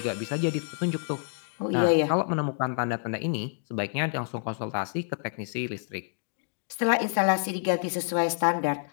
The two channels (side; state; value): right; silent; 59 dB below the other